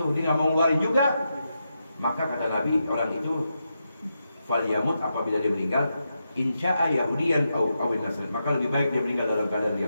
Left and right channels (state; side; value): inverted; both; correlation -0.86